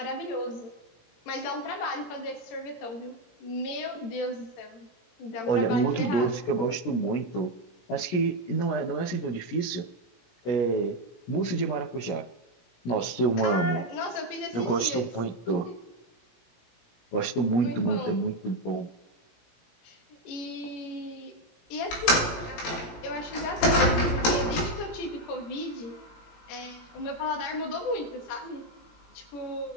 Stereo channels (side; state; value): right; late; 17 ms